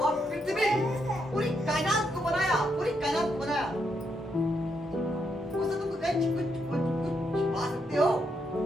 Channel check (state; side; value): normal; both; correlation 0.79